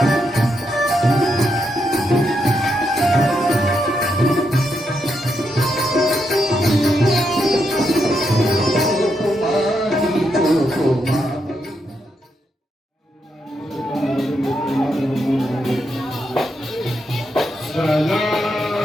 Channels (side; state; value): both; normal; correlation 0.81